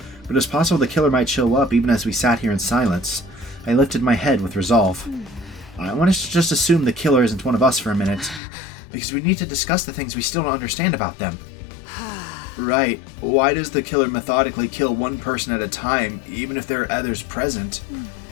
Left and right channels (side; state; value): right; drops out; at 8.4 s